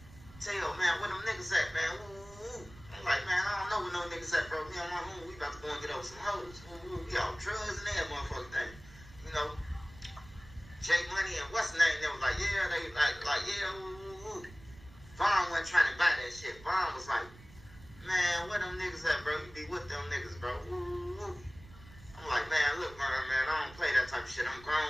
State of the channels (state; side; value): noise; right; rumble, 20 dB below the sound